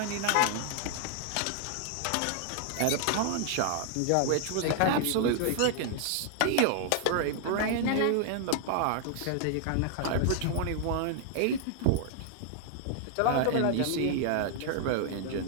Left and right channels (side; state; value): both; different; correlation -0.01